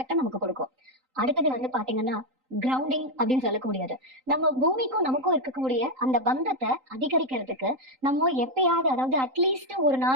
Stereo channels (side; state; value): left; late; 3.8 ms